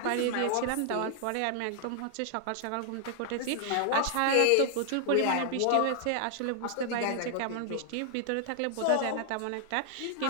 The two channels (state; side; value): different; both; correlation 0.00